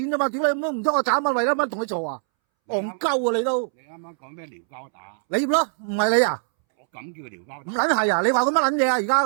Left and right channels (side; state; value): left; silent; 63 dB below the other